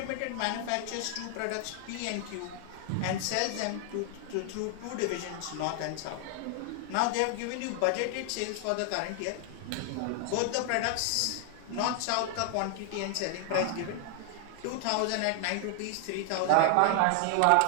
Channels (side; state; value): both; different; correlation 0.00